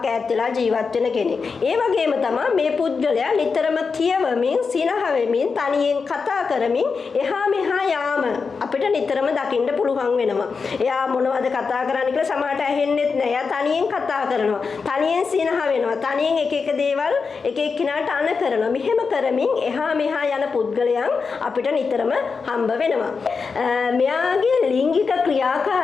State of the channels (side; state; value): right; quieter; 5.0 dB